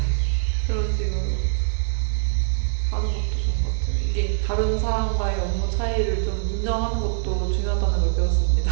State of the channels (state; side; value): silent; left; digital silence